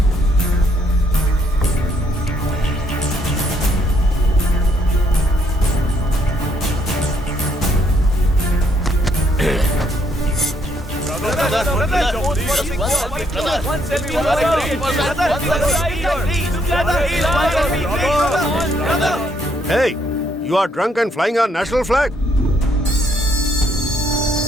Hey, you are drunk and flying our national flag.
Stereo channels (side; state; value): both; normal; correlation 0.71